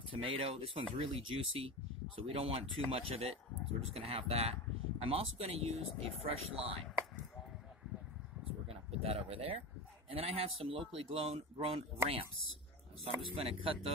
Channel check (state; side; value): normal; both; correlation 0.25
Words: tomato. This one's really juicy, so we don't want too much of it, so we're just going to have that. I'm also going to use a fresh lime. So we're going to put that over there. And then I have some locally grown ramps. So I'm just going to cut